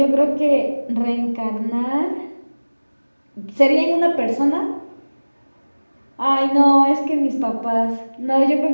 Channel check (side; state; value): both; inverted; correlation -1.00